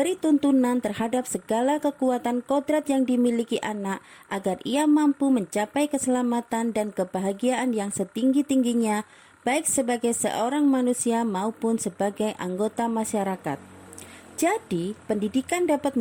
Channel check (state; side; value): identical; both; correlation 1.00